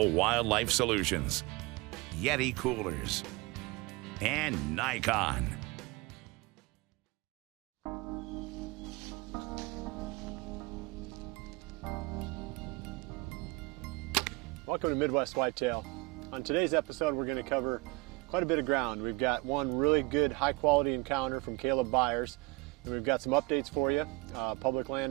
Wildlife Solutions, Yeti Coolers, and Nikon. Welcome to Midwest Whitetail. On today's episode, we're going to cover quite a bit of ground. We've got one really good high quality encounter from Caleb Byers, and we've got some updates for you, public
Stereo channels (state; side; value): quieter; left; 24.2 dB